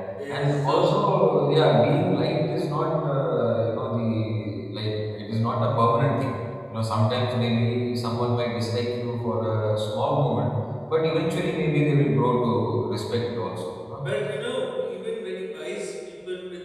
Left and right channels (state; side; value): identical; both; correlation 1.00